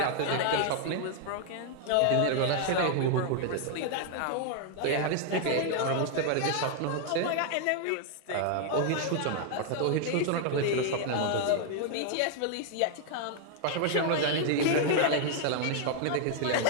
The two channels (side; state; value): both; different; correlation 0.00